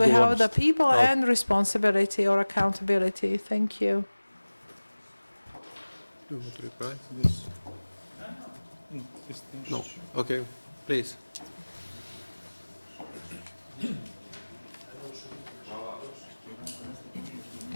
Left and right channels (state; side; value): inverted; both; correlation -1.00